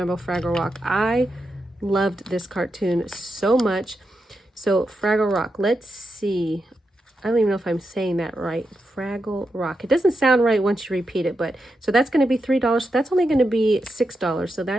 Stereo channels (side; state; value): both; normal; correlation 0.86